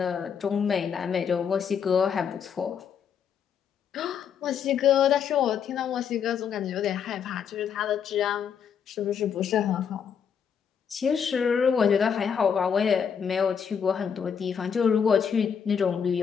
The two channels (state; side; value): quieter; right; 7.4 dB